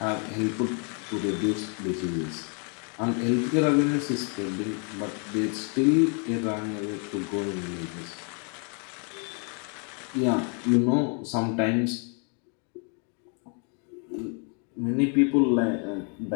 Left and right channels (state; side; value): quieter; right; 38.8 dB